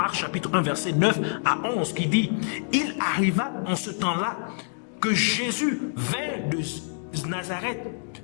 chapitre 1 verset 9 à 11 qui dit « Il arriva en ce temps-là que Jésus vint de Nazareth,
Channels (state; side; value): silent; right; digital silence